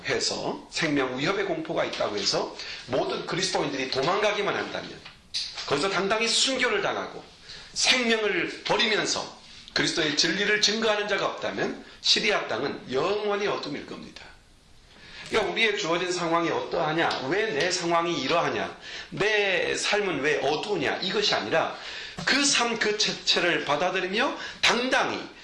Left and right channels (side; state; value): both; identical; correlation 1.00